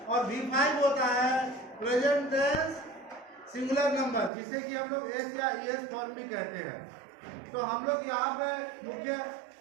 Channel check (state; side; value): drops out; left; at 4.3 s